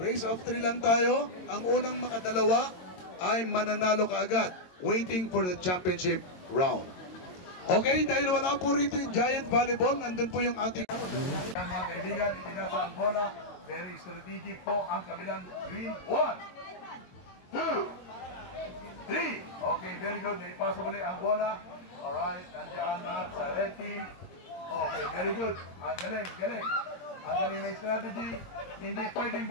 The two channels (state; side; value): late; right; 22 ms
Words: of 3 lang tayo. Ang unang makadalawa ay mananalo kaagad. Waiting for the championship round. Okay? Dahil wala po rito yung Giant Volleyball, nandun po yung ating... Mga kaibigan, itinasa ang bola. Very strategic po ang kabilang green. 1, 2, 3. Okay, very good. Ipasa muli ang bola. Alright, nandiyan na sa red team. Okay, very good. Ang galing, galing. Ang galing na strategy. Hindi pwedeng